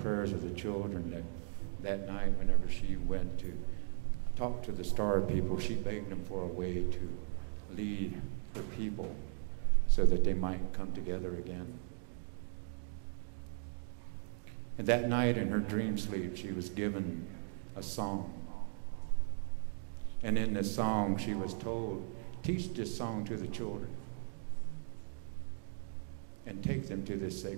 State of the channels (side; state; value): left; silent; digital silence